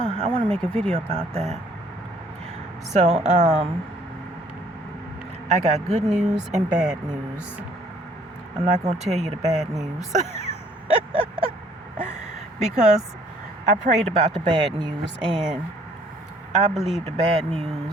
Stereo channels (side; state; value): both; normal; correlation 0.60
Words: I want to make a video about that. So I got good news and bad news. I'm not going to tell you the bad news because I prayed about the bad news, and I believe the bad